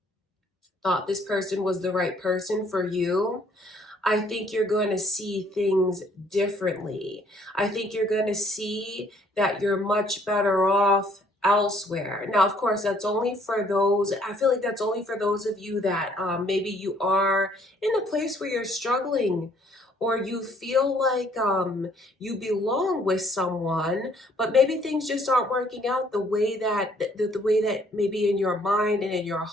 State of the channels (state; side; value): normal; both; correlation 0.63